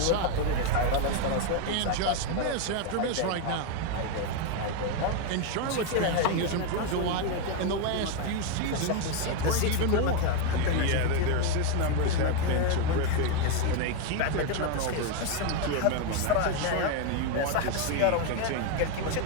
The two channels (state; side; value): different; both; correlation 0.02